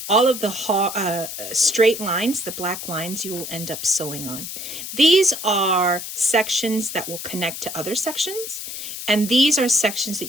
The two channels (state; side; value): noise; left; hiss, 8 dB below the sound